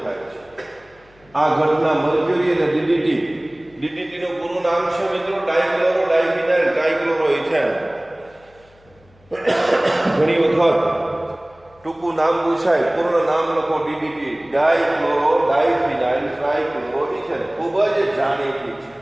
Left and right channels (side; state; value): left; noise; hum, 30 dB below the sound